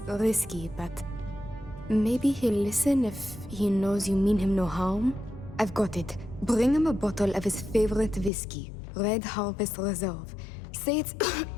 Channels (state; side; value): drops out; right; at 8.3 s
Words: risky, but maybe he'll listen if he knows you mean him no harm. I've got it. Bring him a bottle of his favorite whiskey, Red Harvest Reserve. Say it's...